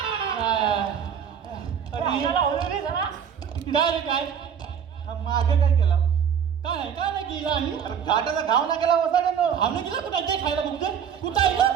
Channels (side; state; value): left; quieter; 7.9 dB